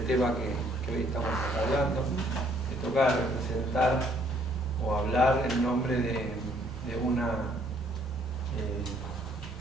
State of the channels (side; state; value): both; normal; correlation 0.64